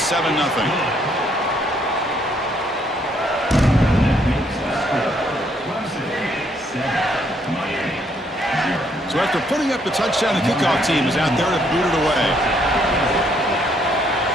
7-0. So after putting up the touchdown, the kickoff team is out there to boot it away.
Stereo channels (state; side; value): normal; both; correlation 0.70